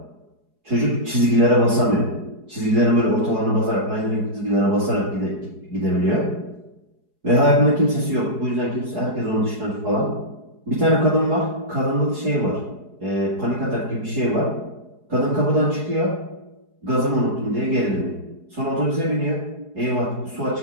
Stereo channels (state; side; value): late; left; 4.7 ms